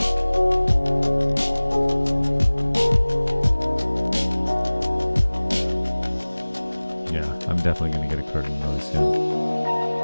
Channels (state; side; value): inverted; both; correlation -1.00